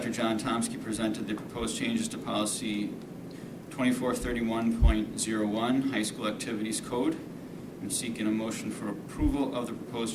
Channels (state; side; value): identical; both; correlation 1.00